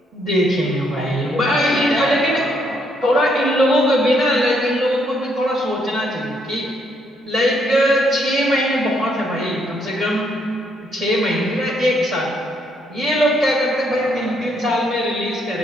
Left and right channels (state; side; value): normal; both; correlation 0.72